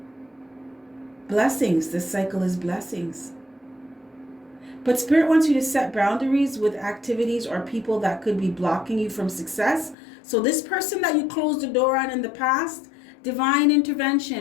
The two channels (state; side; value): drops out; right; at 10.0 s